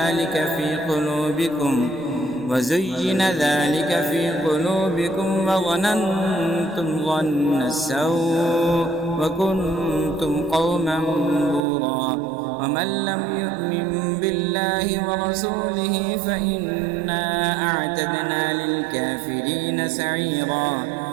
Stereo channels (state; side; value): drops out; left; at 11.6 s